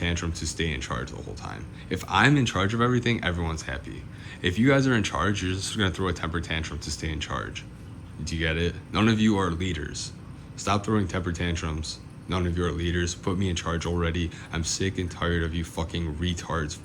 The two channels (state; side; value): identical; both; correlation 1.00